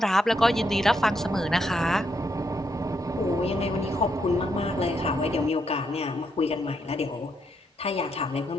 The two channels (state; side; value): normal; both; correlation 0.78